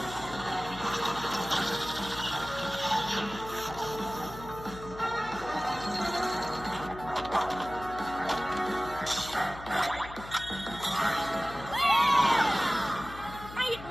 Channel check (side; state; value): left; noise; hum, 14 dB below the sound